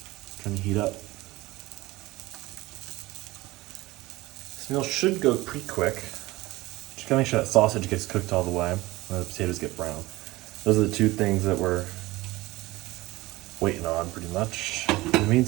Trying to heat up. This meal should go pretty quick. Just gotta make sure that sausage gets cooked all the way, and the potatoes get brown. Those are the two things that we're waiting on, pretty much. In the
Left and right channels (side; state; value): left; quieter; 19.6 dB